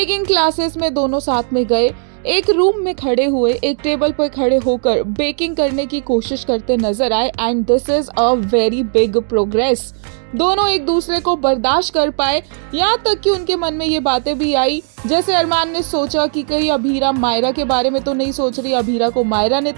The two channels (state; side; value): silent; left; 56 dB below the other